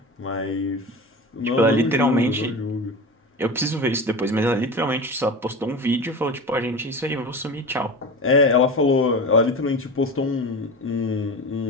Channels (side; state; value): both; normal; correlation 0.29